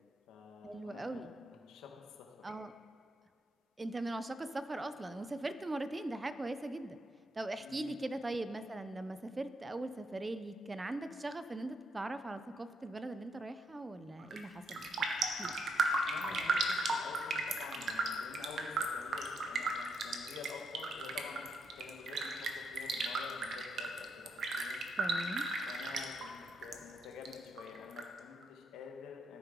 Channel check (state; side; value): normal; both; correlation 0.78